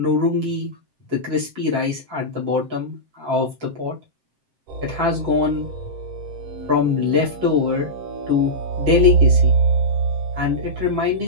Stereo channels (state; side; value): late; left; 7.6 ms